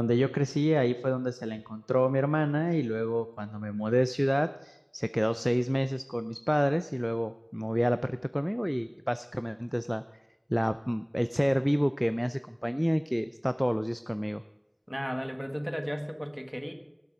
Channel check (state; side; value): identical; both; correlation 1.00